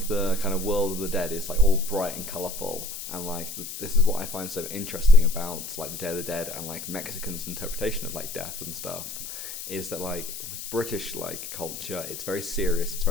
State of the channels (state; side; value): noise; left; hiss, 9 dB below the sound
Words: the kind of world of the dead is like all bright and colourful, and like this is what I find so interesting about like the Day of the Dead and like Mexicans' interpretation of like death and stuff, is that like with British like culture, it's very serious, it's